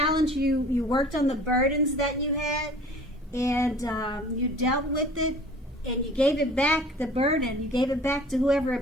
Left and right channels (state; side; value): normal; both; correlation 0.47